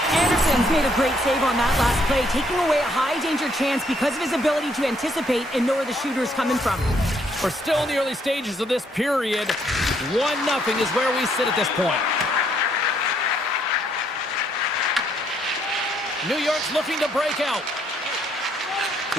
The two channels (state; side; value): normal; both; correlation 0.70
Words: Anderson's made a great save on that last play, taking away a high-danger chance because of his ability to anticipate and know where the shooter is coming from. We're still in the early stages of this period. 1-0 is where we sit at this point. New York's looking to break out.